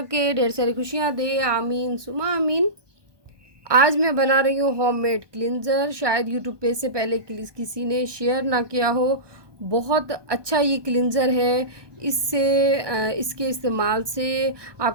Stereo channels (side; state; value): left; late; 1.2 ms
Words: ढेर सारी खुशियाँ दे, आमीन सुमा आमीन। आज मैं बना रही हूँ होममेड क्लिनज़र। शायद यूट्यूब पे से पहले किसी ने शेयर ना किया हो। बहुत अच्छा ये क्लिनज़र है। इसके इस्तेमाल से